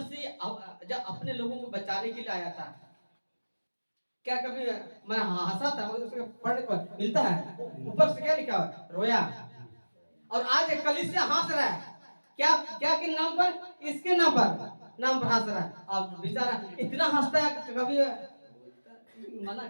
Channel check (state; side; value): inverted; both; correlation -1.00